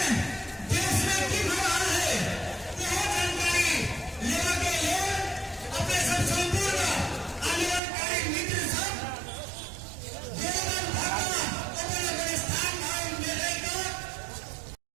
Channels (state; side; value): drops out; left; at 7.8 s